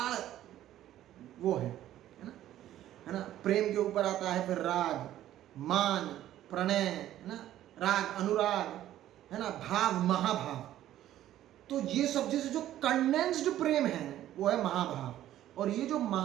वो है ना। प्रेम के ऊपर आता है फिर राग, मान, प्रणय, है ना, राग, अनुराग, है ना, भाव, महाभाव। तो ये सब जैसे जो कंडेंस्ड प्रेम है वो है महाभाव। और ये जो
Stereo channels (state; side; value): quieter; left; 12.8 dB